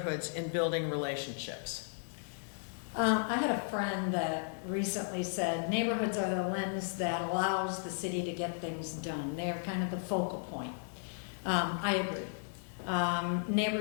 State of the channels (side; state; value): right; silent; digital silence